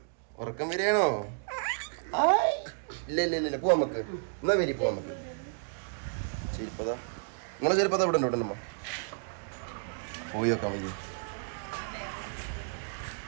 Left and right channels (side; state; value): left; silent; digital silence